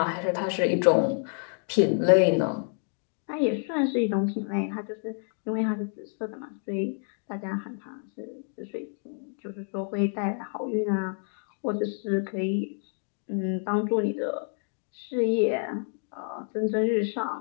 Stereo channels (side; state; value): right; silent; 58 dB below the other